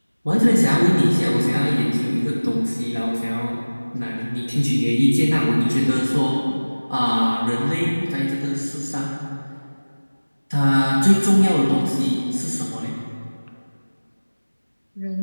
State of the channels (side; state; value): both; inverted; correlation -1.00